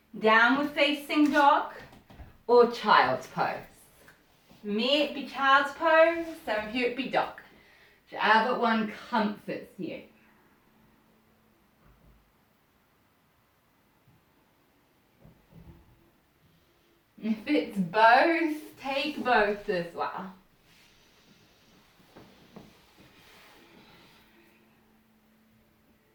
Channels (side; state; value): both; identical; correlation 1.00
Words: Downward facing dog or child's pose. For me it'd be child's pose, some of you it'd be dog. Whichever one comforts you. If it's both, take both as well.